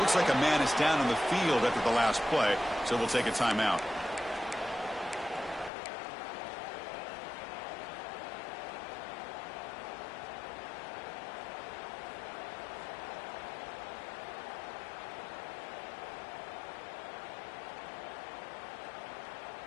like a man is down on the field after the last play, so we'll take a timeout.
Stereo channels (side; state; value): right; drops out; at 5.7 s